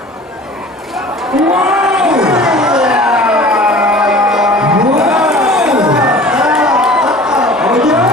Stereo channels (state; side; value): normal; both; correlation 0.43